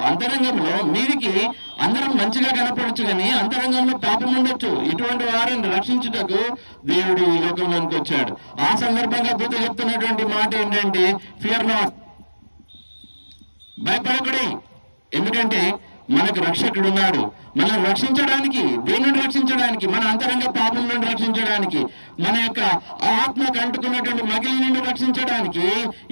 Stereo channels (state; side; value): inverted; both; correlation -1.00